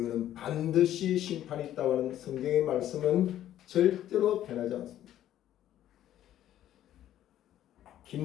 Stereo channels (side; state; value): right; quieter; 12.1 dB